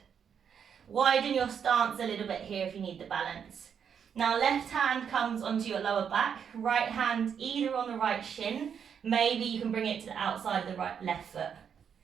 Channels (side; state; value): left; quieter; 7.5 dB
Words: Widen your stance a little bit here if you need the balance. Now left hand comes onto your lower back, right hand either on the right shin, maybe you can bring it to the outside of the left foot.